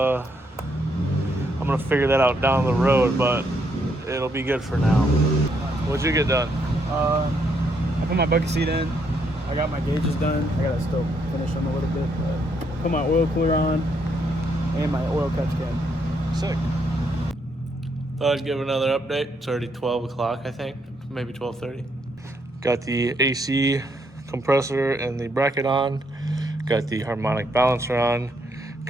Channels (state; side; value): normal; both; correlation 0.74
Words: I'm gonna figure that out down the road, but it'll be good for now. What'd you get done? I put my bucket seat in. I got my gauges done. I gotta still finish them a little bit. But put my oil cooler on and my oil catch can. Sick. Thought I'd give another update. It's already 12 o'clock, I think, maybe 12:30. Got the AC compressor and the bracket on. Got the harmonic balancer on.